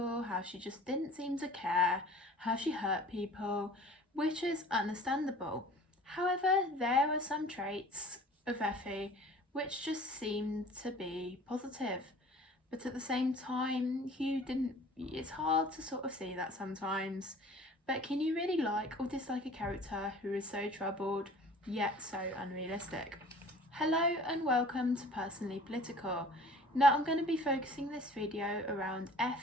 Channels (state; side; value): normal; both; correlation 0.47